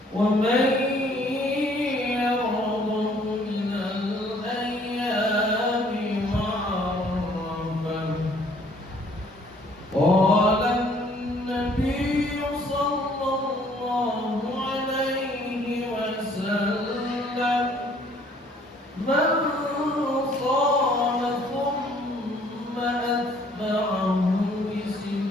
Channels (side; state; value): both; normal; correlation 0.60